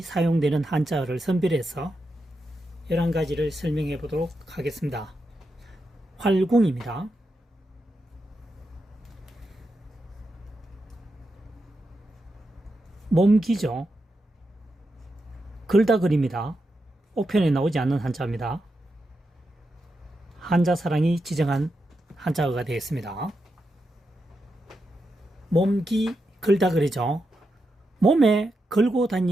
사용되는 한자어를 선별해서 11가지를 설명해 보도록 하겠습니다. 활궁입니다. 몸기죠. 글다글입니다. 옥편에 나오지 않는 한자입니다. 한자사랑이 지정한 한자어가 되겠습니다. 몸기 글다글이죠. 몸에 걸고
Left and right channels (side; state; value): both; normal; correlation 0.87